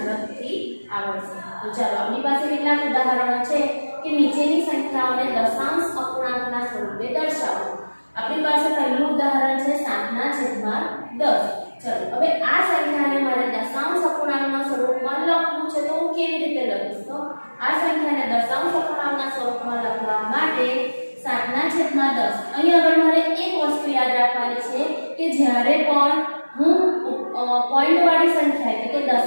આવડશે. તો ચાલો આપણી પાસે કેટલાક ઉદાહરણો છે કે નીચેની સંખ્યાઓને દશાંશ અપૂર્ણાંકના સ્વરૂપે દર્શાવો. આપણી પાસે પહેલું ઉદાહરણ છે 7/10. ચલો હવે આ સંખ્યાને મારે દશાંશ અપૂર્ણાંકના સ્વરૂપમાં લખવું છે તો હું કેવી રીતે લખીશ? તો આ સંખ્યાને દશાંશ અપૂર્ણાંકના સ્વરૂપમાં લખવા માટે 7/10. અહીં આગળ મારે એક વસ્તુ યાદ રાખવાની છે કે જ્યારે પણ હું પોઈન્ટવાળી સંખ્યા એટલે કે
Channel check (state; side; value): inverted; both; correlation -1.00